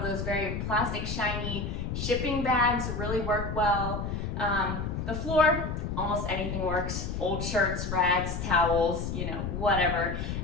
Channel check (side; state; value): left; noise; rumble, 4 dB below the sound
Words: those very plastic shiny shipping bags really work well. The floor, almost anything works. Old shirts, rags, towels, you know, whatever.